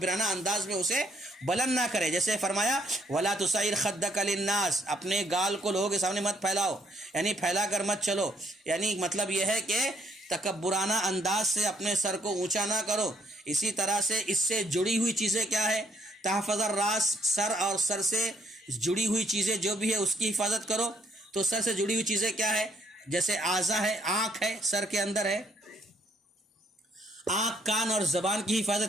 انداز میں اسے بلند نہ کرے. جیسے فرمایا وَلَا تُسَعِّرْ خَدَّكَ لِلنَّاسِ، اپنے گال کو لوگوں کے سامنے مت پھیلاؤ، یعنی پھیلا کر مت چلو. یعنی مطلب یہ ہے کہ تکبرانہ انداز سے اپنے سر کو اونچا نہ کرو. اسی طرح سے اس سے جڑی ہوئی چیزیں کیا ہے؟ تحفظ الراس، سر اور سر سے جڑی ہوئی چیزیں جو بھی ہے اس کی حفاظت کرو. تو سر سے جڑی ہوئی چیزیں کیا ہے؟ جیسے اعضاء ہے، آنکھ ہے سر کے اندر ہے، آنکھ، کان اور زبان کی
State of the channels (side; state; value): both; normal; correlation 0.69